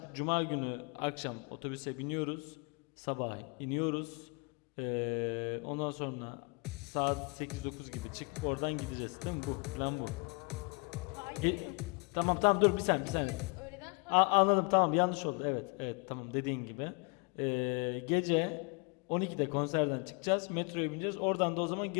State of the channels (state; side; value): quieter; right; 32.1 dB